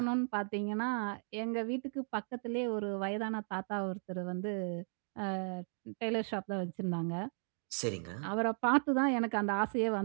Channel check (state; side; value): silent; left; 54 dB below the other